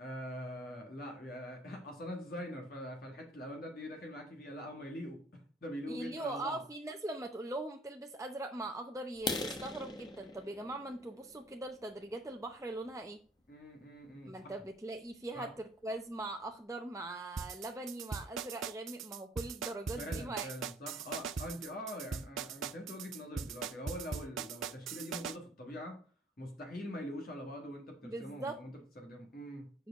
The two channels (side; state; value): both; normal; correlation 0.57